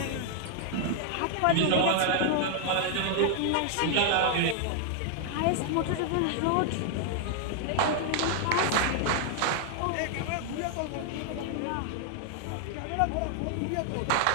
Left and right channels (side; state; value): both; different; correlation 0.00